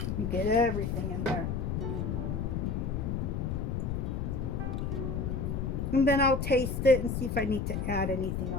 You get everything in there. And then I'll taste it and see if I need to add anything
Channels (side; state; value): left; noise; rumble, 1 dB below the sound